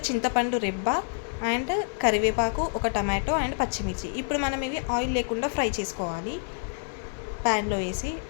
చింతపండు రెబ్బ అండ్ కరివేపాకు, ఒక టమాటో అండ్ పచ్చిమిర్చి. ఇప్పుడు మనం ఇవి ఆయిల్ లేకుండా ఫ్రై చేసుకోవాలి. ప్యాన్లో వేసి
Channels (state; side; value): silent; right; 60 dB below the other